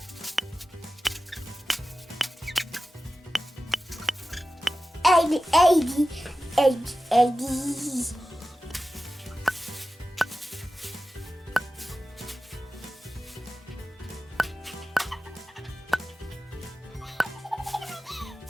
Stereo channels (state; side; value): normal; both; correlation 0.94